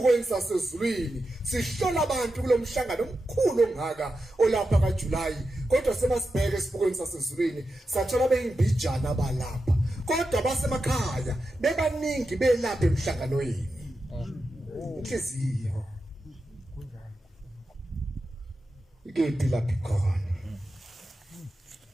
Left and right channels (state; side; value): normal; both; correlation 0.90